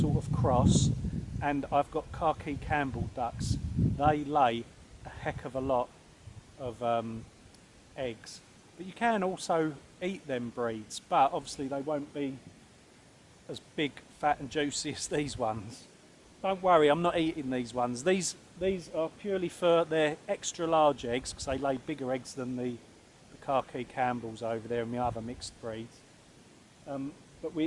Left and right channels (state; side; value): identical; both; correlation 1.00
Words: of cross, and I've got khaki Campbell ducks. They lay a heck of a lot of eggs. But you can also eat them breeds, but obviously they won't be as big, fat and juicy as these ones. Don't worry, I'm not eating these ones. These are purely for their extra large eggs, because they lay bigger eggs than the khaki Campbells over there and the other mixed breeds. But